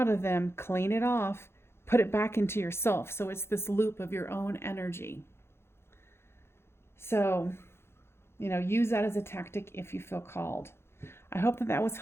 of them, clean it off, put it back into yourself. So it's this loop of your own energy. So, use that as a tactic if you feel called. I hope that was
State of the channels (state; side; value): late; right; 0.12 ms